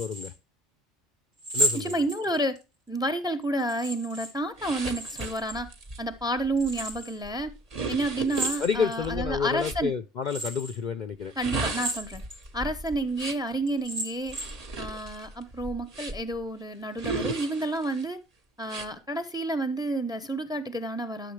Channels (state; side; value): normal; both; correlation 0.53